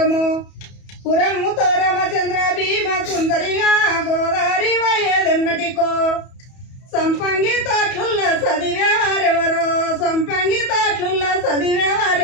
పురముతో రామచంద్ర భీమ సుందరిగా గోదావరి వయ్యేదెన్నటికో సంపంగి తాట్లుల్ల చదివేవారెవరో సంపంగి తాట్లుల్ల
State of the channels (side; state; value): right; late; 31 ms